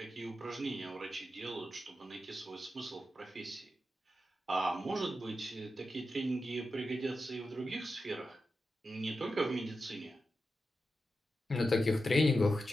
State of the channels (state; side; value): normal; both; correlation 0.90